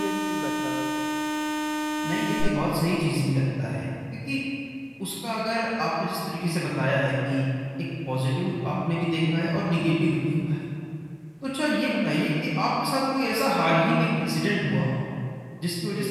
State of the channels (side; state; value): both; identical; correlation 1.00